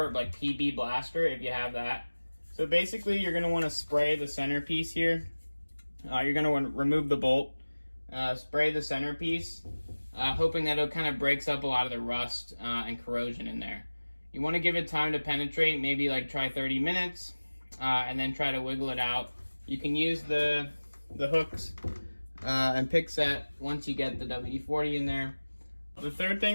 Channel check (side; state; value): both; inverted; correlation -1.00